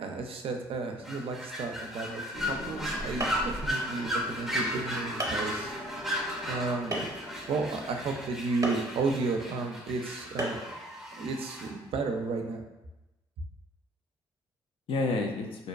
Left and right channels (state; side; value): normal; both; correlation 0.54